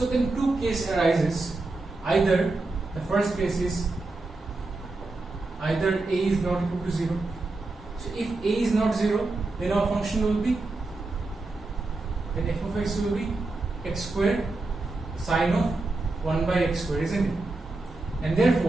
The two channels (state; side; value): quieter; left; 3.2 dB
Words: then two cases arises. Either the first case is either a is not equal to 0. So if a is not 0, then our function will be, then f of x will be x squared sine of 1 by x squared, isn't it? And